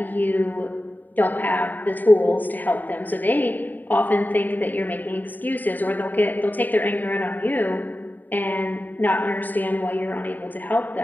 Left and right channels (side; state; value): right; late; 0.088 ms